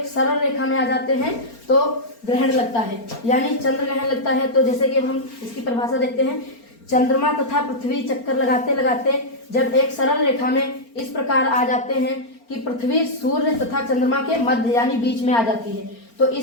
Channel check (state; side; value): late; right; 4.4 ms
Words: सरल रेखा में आ जाते हैं तो ग्रहण लगता है, यानी चंद्र ग्रहण लगता है। तो जैसे कि अब हम इसकी परिभाषा देखते हैं, चंद्रमा तथा पृथ्वी चक्कर लगाते लगाते जब एक सरल रेखा में इस प्रकार आ जाते हैं कि पृथ्वी सूर्य तथा चंद्रमा के मध्य यानी बीच में आ जाती है, तो